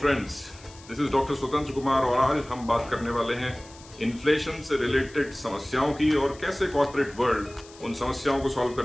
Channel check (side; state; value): left; noise; hiss, 21 dB below the sound